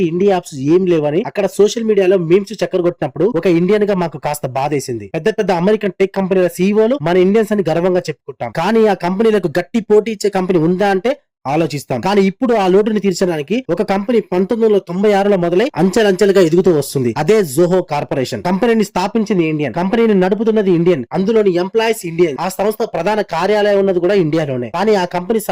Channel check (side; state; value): both; identical; correlation 1.00